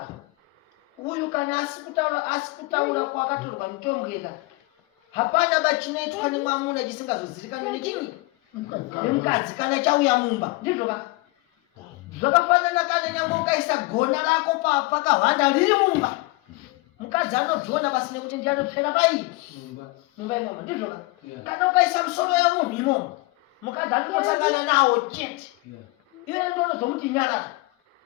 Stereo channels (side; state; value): right; quieter; 23.2 dB